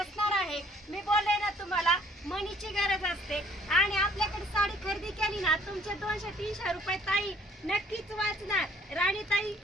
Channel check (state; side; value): normal; both; correlation 0.60